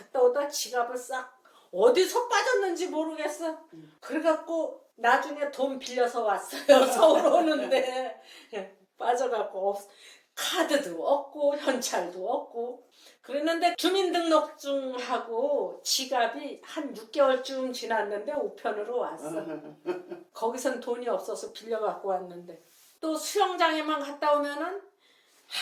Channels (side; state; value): both; identical; correlation 1.00